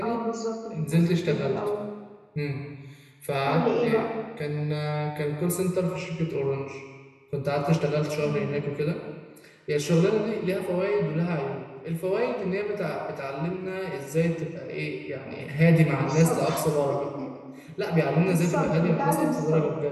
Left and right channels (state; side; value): identical; both; correlation 1.00